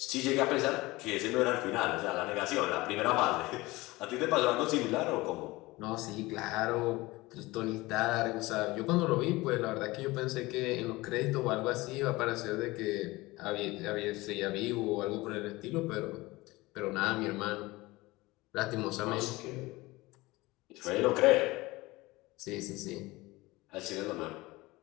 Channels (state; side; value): quieter; right; 20.9 dB